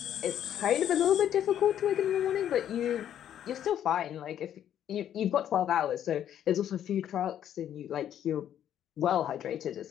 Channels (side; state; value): right; quieter; 10.4 dB